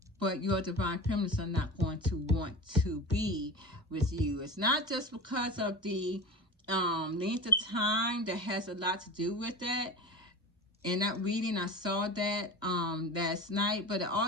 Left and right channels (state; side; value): normal; both; correlation 0.30